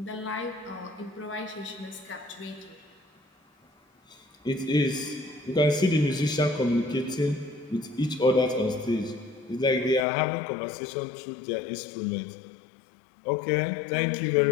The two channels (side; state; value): right; drops out; at 10.0 s